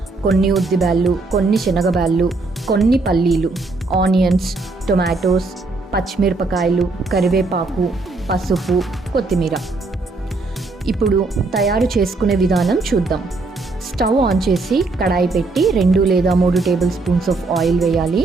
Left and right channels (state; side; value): quieter; left; 3.5 dB